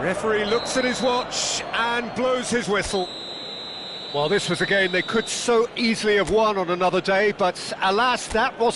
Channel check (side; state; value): both; identical; correlation 1.00